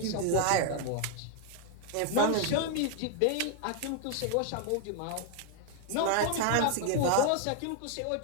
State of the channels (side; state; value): both; different; correlation 0.00